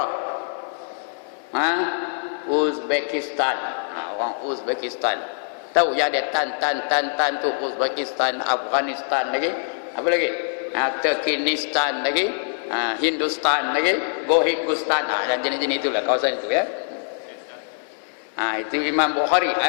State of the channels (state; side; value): silent; right; digital silence